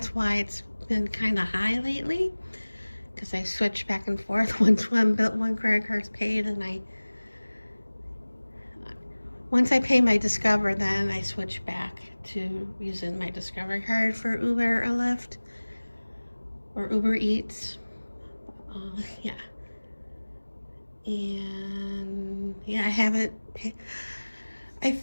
why it's been kind of high lately, because I switch back and forth. Once one credit card's paid, and once I pay my Discover, then I switch back to using my Discover card for Uber or Lyft or Uber Eats. Yeah. And yeah, I haven't paid. I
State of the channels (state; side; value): inverted; both; correlation -1.00